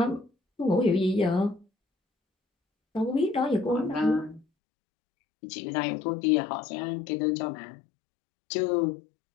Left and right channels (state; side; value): drops out; right; at 4.5 s